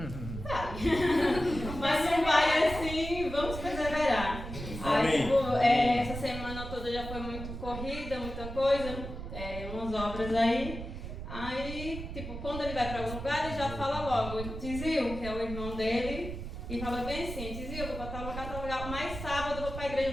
Vai. Mas não vai assim, vamos perseverar. Aí tipo, essa semana toda já foi muito corrida. vida, muita coisa, umas obras aí. Aí, tipo, quando ele vai para algum lugar, ele já fala logo, Tizil, que é o irmão dele, e fala bem assim, Tizil, eu vou para tal lugar, mas sábado eu vou para a igreja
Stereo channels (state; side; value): noise; right; rumble, 8 dB below the sound